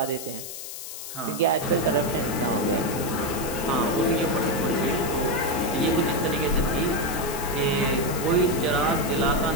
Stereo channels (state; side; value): noise; left; hiss, 9 dB below the sound